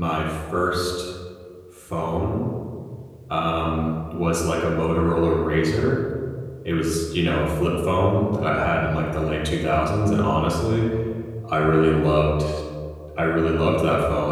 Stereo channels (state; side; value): identical; both; correlation 1.00